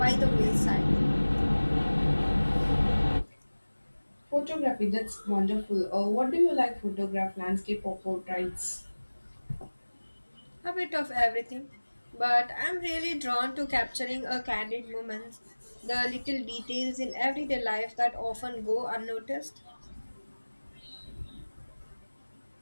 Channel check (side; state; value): both; inverted; correlation -1.00